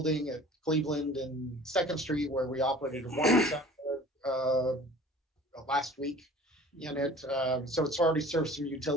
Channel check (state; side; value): normal; both; correlation 0.46